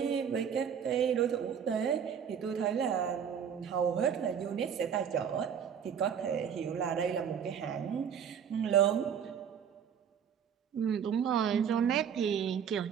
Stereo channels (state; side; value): quieter; left; 7.9 dB